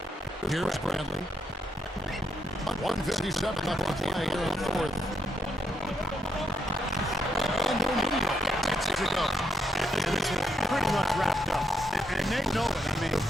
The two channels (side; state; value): both; normal; correlation 0.79